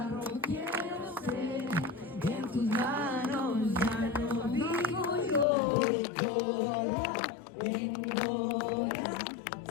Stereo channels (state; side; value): drops out; right; at 5.5 s